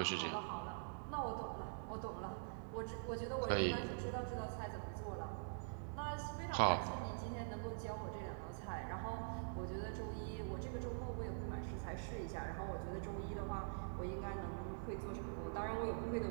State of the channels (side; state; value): left; silent; digital silence